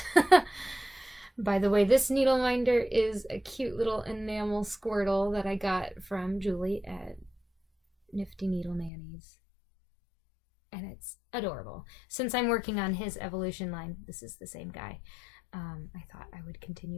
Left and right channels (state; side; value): drops out; right; at 8.9 s